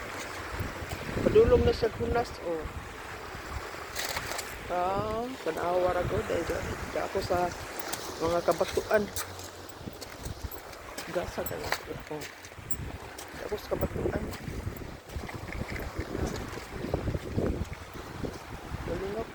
padulong na sa hunas o. Kanawa ra ko dahil di ako sa mga kabatuan. Gasa kaya ako. Di ako sa kabatuan. Galing ako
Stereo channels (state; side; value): identical; both; correlation 1.00